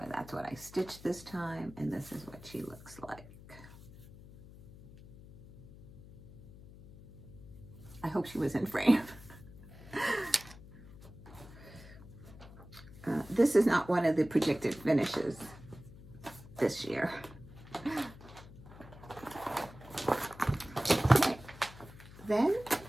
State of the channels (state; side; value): noise; left; hum, 18 dB below the sound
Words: that's what I stitched this time, and this is what she looks like. I hope she was in frame. This is not one of the projected finishes this year. Okay. Then,